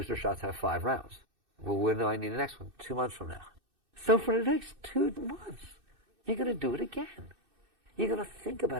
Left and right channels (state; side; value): late; left; 2.6 ms